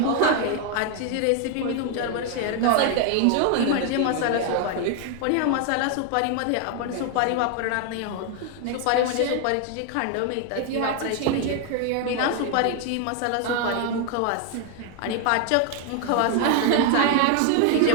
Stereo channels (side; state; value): both; different; correlation 0.00